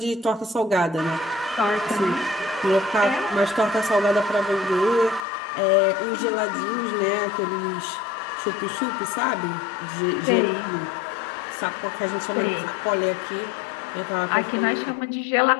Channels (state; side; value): drops out; right; at 5.2 s